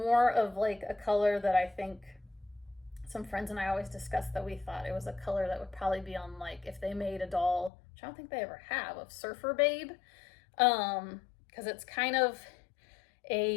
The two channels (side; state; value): right; drops out; at 7.7 s